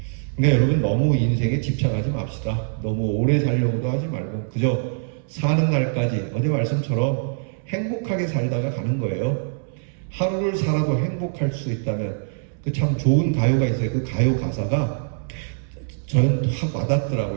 그러니까 여러분 너무 인생에 집착하지 맙시다. 너무 오래 살려고도 하지 말고 그저 사는 날까지 어제 말씀처럼 행복하게 살다가 가는 거예요. 하루를 살아도 행복할 수 있다면 그 참 좋은 가요가 있어요. 그 가요 가사가 저는 확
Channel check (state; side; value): silent; left; 63 dB below the other